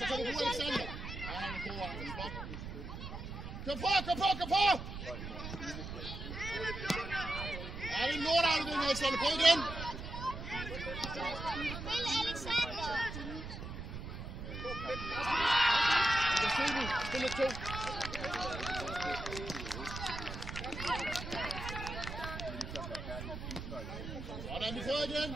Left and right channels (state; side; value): noise; right; rumble, 8 dB below the sound